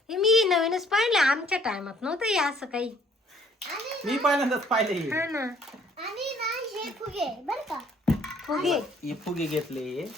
हे मी नवीनच पाहिलं, आमच्या टायमात नव्हतं हे असं काही. आणि मी पहिल्यांदाच पाहिले हे. हा ना आणि ना हे फुगे बर का फुगे हे फुगे घेतले,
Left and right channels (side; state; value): both; normal; correlation 0.60